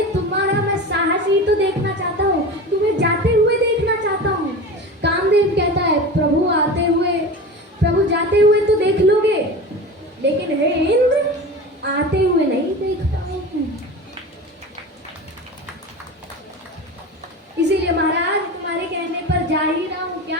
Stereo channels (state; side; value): normal; both; correlation 0.31